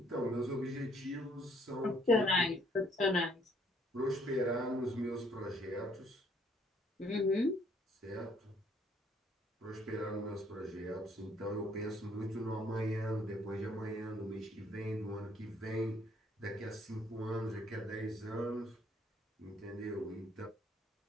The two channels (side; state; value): both; normal; correlation 0.64